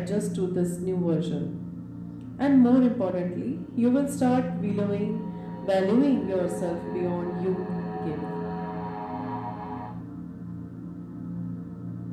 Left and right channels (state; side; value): identical; both; correlation 1.00